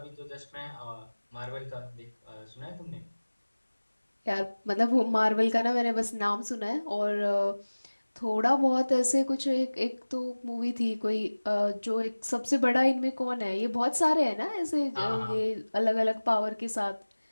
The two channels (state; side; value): inverted; both; correlation -1.00